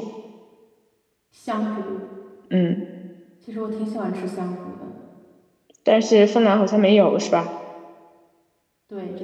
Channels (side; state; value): both; identical; correlation 1.00